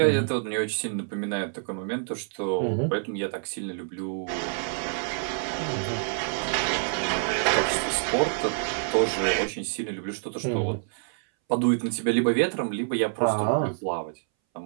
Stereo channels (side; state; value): left; silent; 60 dB below the other